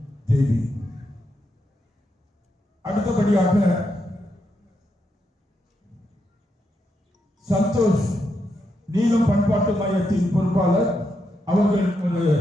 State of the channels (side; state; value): both; normal; correlation 0.82